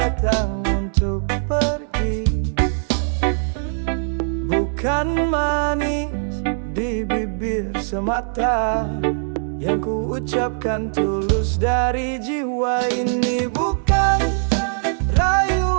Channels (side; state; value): left; silent; 65 dB below the other